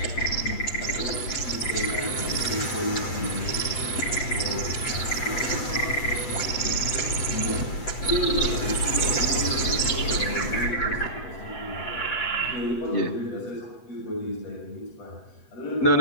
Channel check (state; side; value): late; right; 8.1 ms